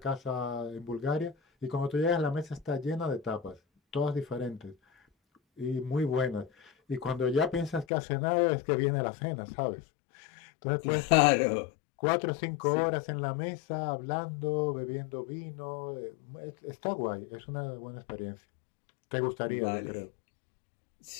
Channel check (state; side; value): drops out; right; at 7.9 s